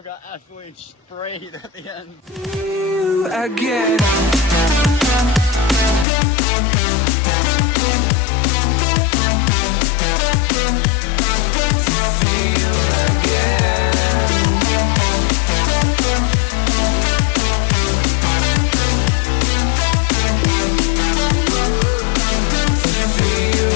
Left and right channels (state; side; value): drops out; right; at 6.1 s